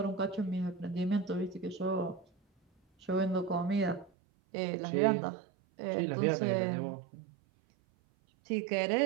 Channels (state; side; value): drops out; left; at 4.1 s